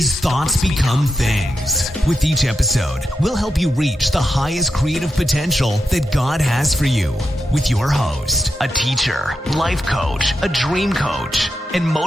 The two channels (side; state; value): both; normal; correlation 0.87